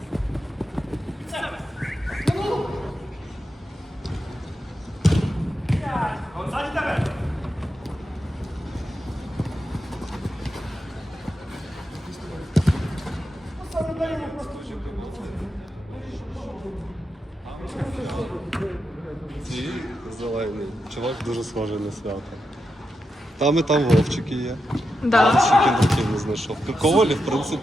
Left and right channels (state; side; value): normal; both; correlation 0.87